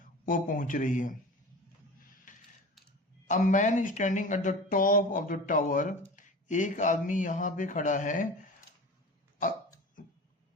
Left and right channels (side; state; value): both; normal; correlation 0.35